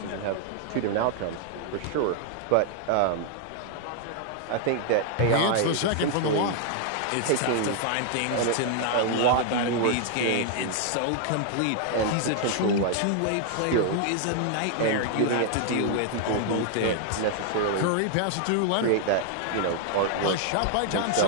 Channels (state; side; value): different; both; correlation 0.00